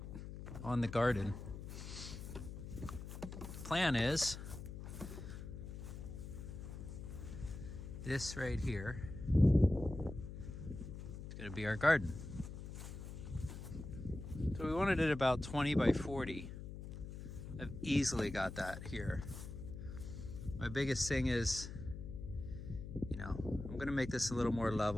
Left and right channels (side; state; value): left; noise; hum, 9 dB below the sound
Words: on the garden. Plan is this right here. It's gonna be our garden. So we wanted it about 20 by 40. I've easily got that here. My biggest thing is, I'm gonna make this a little more